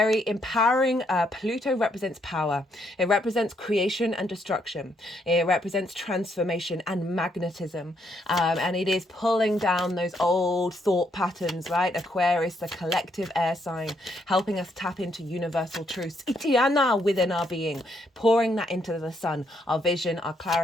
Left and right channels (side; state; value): both; normal; correlation 0.74